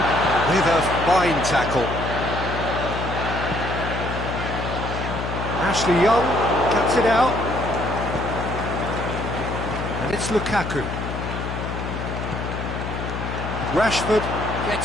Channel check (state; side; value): noise; left; hum, 5 dB below the sound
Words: with a fine tackle. Ashley Young cuts it out. And it's Lukaku. Rashford